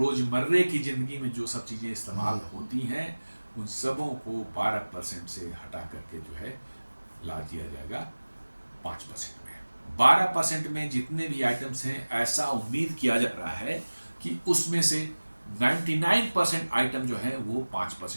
की ज़िंदगी में जो सब चीज़ें इस्तेमाल होती हैं, उन सबों को 12% से हटा करके जो है ला दिया जाएगा 5% में। 12% में जितने भी आइटम्स हैं, ऐसा उम्मीद किया जा रहा है कि उसमें से 99% आइटम जो है वो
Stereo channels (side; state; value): both; inverted; correlation -1.00